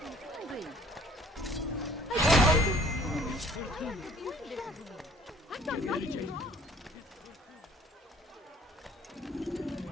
and hungry. I've done nothing wrong.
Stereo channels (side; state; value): both; normal; correlation 0.55